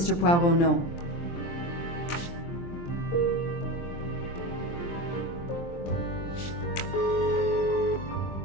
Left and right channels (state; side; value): late; right; 23 ms